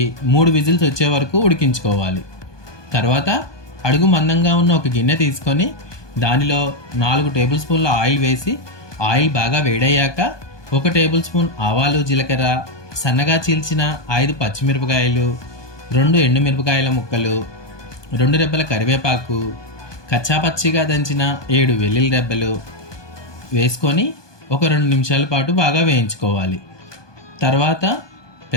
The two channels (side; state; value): right; late; 1.2 ms